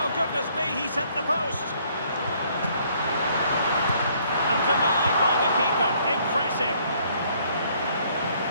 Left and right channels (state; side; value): inverted; both; correlation -0.64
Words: goodness me, he's hit the post. And denied by the keeper. Impressive.